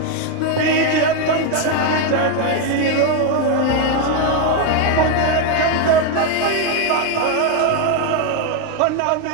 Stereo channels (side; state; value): both; different; correlation 0.01